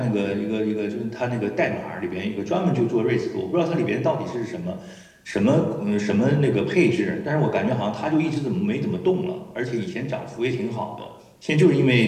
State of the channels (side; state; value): both; identical; correlation 1.00